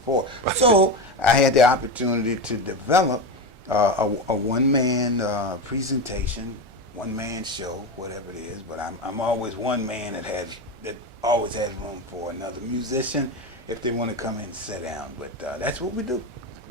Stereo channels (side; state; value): left; late; 1.4 ms